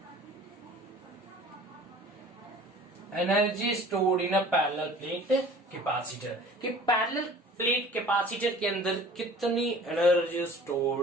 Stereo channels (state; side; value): normal; both; correlation 0.47